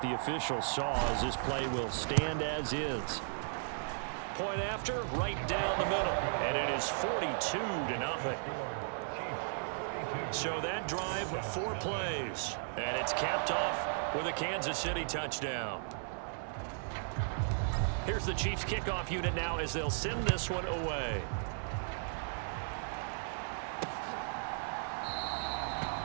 the officials saw, as this play will stand as is. Point after, right down the middle, and it is 42-0. So that drive, 4 plays, and it's capped off with a Kansas City touchdown. Here's the Chiefs kickoff unit now as they'll send this one away.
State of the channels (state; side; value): silent; left; 54 dB below the other